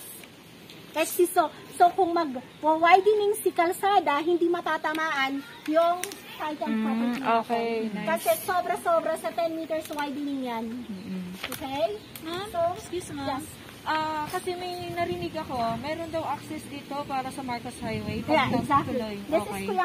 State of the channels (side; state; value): both; identical; correlation 1.00